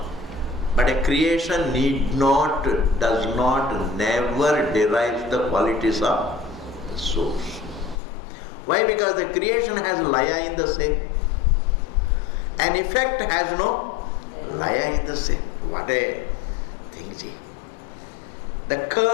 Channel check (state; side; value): drops out; right; at 8.0 s